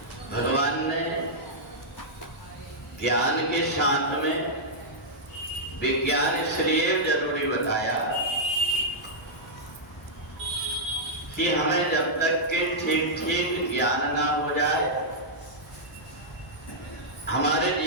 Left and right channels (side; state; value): both; normal; correlation -0.08